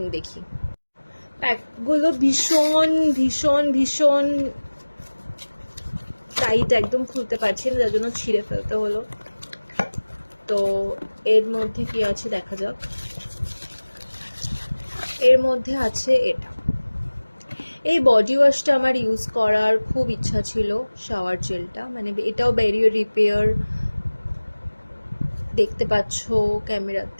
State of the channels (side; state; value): both; inverted; correlation -1.00